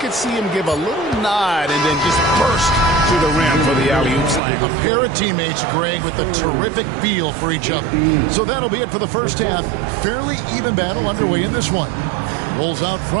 see him give a little nod and then just burst to the rim for the alley-oop slam. A pair of teammates, Greg, with a terrific feel for each other. So that'll be it for the first half. Fairly even battle underway in this one. Bulls out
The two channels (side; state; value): left; drops out; at 4.4 s